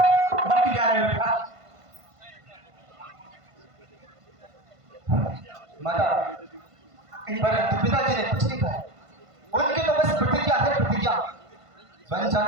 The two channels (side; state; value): left; late; 1.5 ms